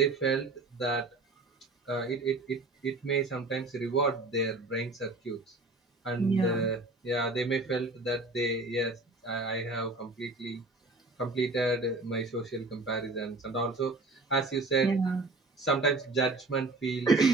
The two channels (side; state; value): left; quieter; 3.1 dB